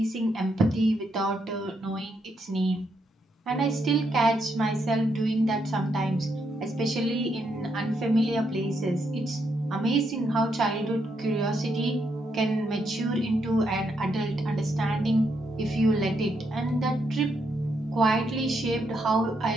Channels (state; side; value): normal; both; correlation 0.78